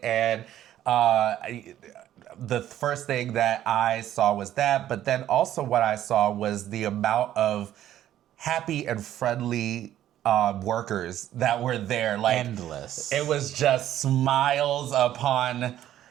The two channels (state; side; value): quieter; left; 12.1 dB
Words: and the first thing that I saw was that, but then also what I saw was the amount of happy and friendly workers that were there. Like, endless. It was just smiles upon.